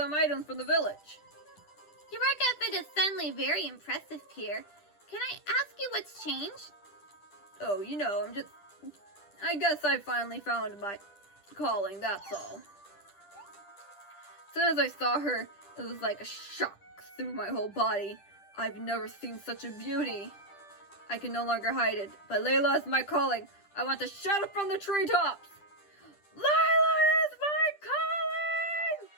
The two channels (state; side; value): late; right; 10 ms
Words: items from the village. Your work outfit is suddenly very impressive, Pierre. Can I ask you what's changed? Oh, I guess I finally found my calling, that's all. As soon as I saw her, it was like a shock through my whole body. I've never seen such a beauty. I can no longer hide it, but Layla is my calling. I want to shout it from the treetops. Layla is my calling!